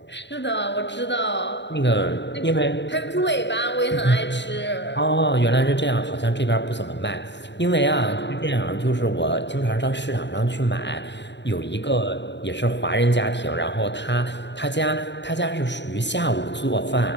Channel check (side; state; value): right; late; 0.52 ms